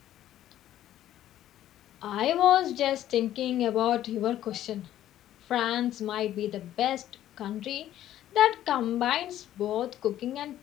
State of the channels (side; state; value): right; quieter; 12.4 dB